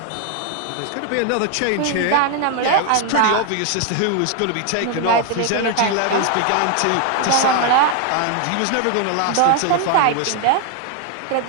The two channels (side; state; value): both; different; correlation 0.01